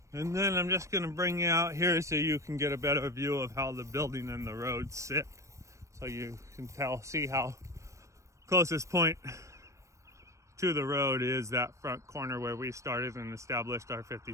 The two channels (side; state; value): left; late; 0.15 ms